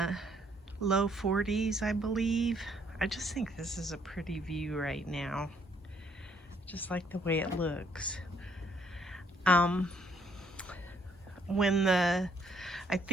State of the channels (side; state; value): both; normal; correlation 0.68